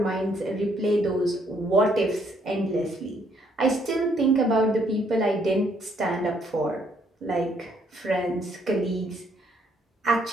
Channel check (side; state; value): both; normal; correlation 0.69